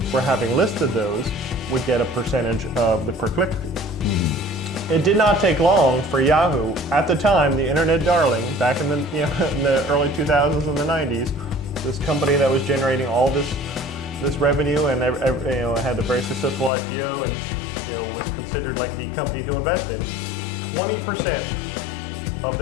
for having listed those, would get a percentage of the per-click fee. It did not take long for Yahoo, at the time, the internet darling, back in the in the early 2000s and the 90s, this company that was generating all this revenue and had a very successful IPO and was considered like the company to invest in. 20% of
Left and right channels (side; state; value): right; drops out; at 16.7 s